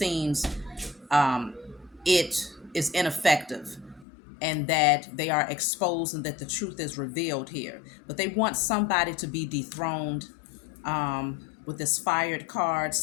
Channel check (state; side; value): drops out; right; at 4.0 s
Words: it is ineffective and that they are exposed and that the truth is revealed here. But they want somebody to be dethroned with this fired card.